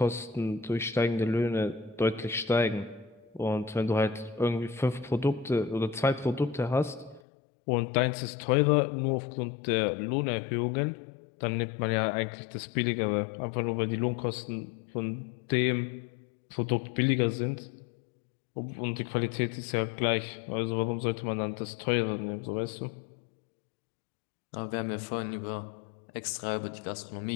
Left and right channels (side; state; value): right; drops out; at 7.2 s